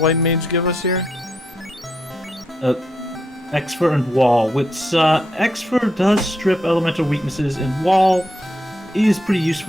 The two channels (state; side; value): normal; both; correlation 0.79